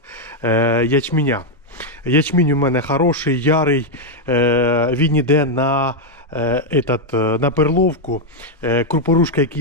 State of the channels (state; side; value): normal; both; correlation 0.00